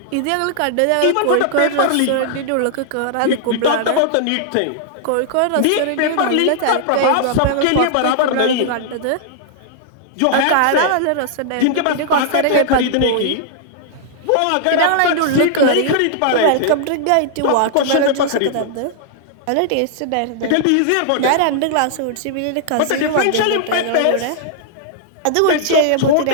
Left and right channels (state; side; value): different; both; correlation -0.01